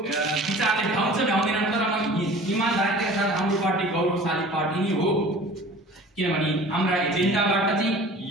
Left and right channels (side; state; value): both; normal; correlation 0.44